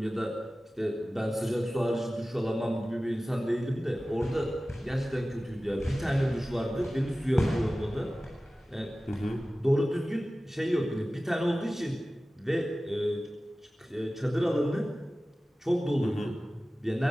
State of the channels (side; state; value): both; normal; correlation 0.96